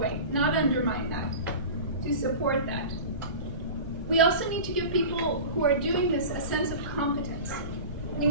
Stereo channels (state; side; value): inverted; both; correlation -0.34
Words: not undermine that, to support that. We also need to give people who are doing this a sense of competence. We